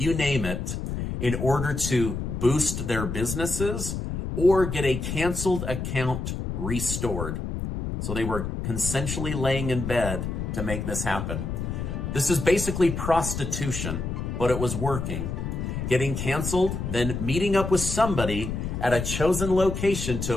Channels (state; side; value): noise; left; rumble, 4 dB below the sound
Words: name it, in order to boost their businesses or get a canceled account restored. So they were consensually laying in bed to make this happen. This is basically prostitution, but it was working. Getting canceled, then meeting up with somebody at a chosen location